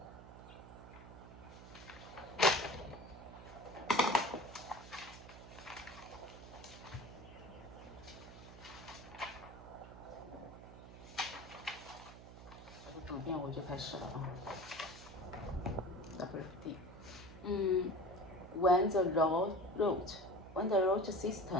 读遍我就开始了啊。WFD。When the root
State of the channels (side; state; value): right; noise; hum, 15 dB below the sound